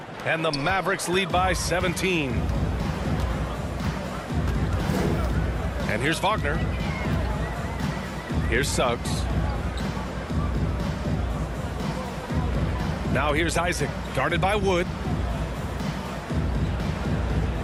And the Mavericks lead by 17. And here's Wagner. Here's Suggs. Now here's Isaac, guarded by Wood.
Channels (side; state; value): both; identical; correlation 1.00